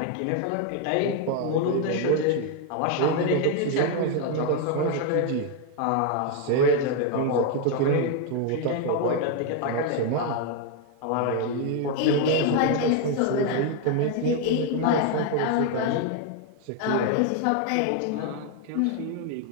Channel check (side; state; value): both; different; correlation 0.01